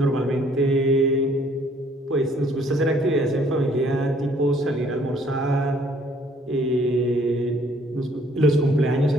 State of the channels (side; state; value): both; normal; correlation 0.61